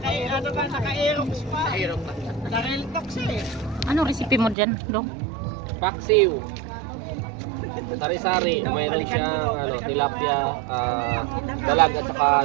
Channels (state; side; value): drops out; left; at 4.5 s